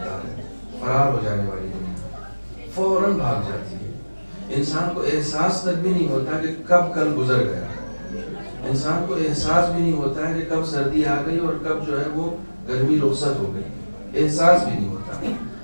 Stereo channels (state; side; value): inverted; both; correlation -1.00